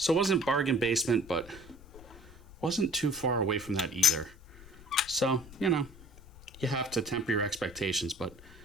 it wasn't bargain basement, but wasn't too far away from that either. So, you have to temper your expectations, but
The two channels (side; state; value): left; noise; rumble, 20 dB below the sound